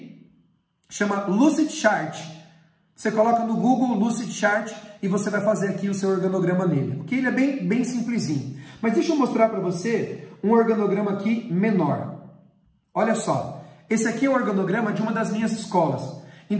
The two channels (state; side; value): identical; both; correlation 1.00